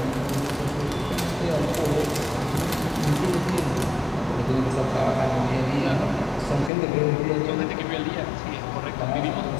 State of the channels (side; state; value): right; drops out; at 6.7 s